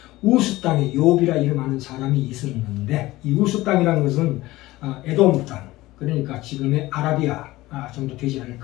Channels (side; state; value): right; quieter; 18.2 dB